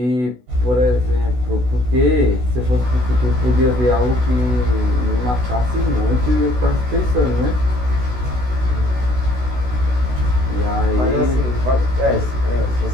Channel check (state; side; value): late; left; 16 ms